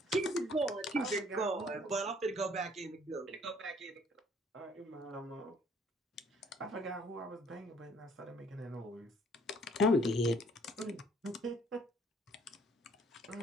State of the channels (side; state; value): both; normal; correlation 0.61